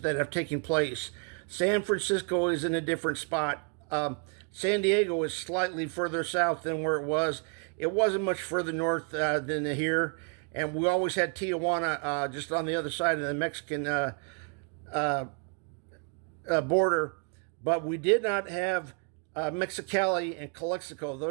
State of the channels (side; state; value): left; quieter; 37.5 dB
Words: have taken place. San Francisco is in a different spot. San Diego is slightly further south than where it was. It wasn't much further north than here. And we always had Tijuana just on the other side of the Mexican border. But we did not have Mexicali and Calexico.